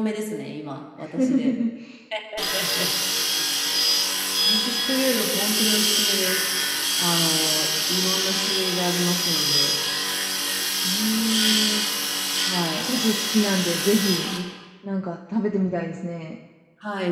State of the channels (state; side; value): identical; both; correlation 1.00